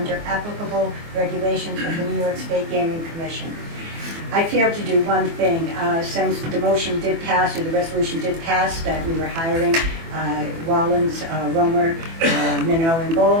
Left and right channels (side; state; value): left; late; 24 ms